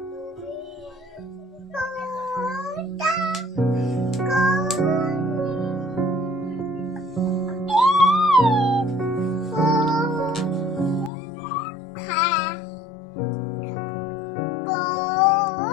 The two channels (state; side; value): drops out; right; at 11.1 s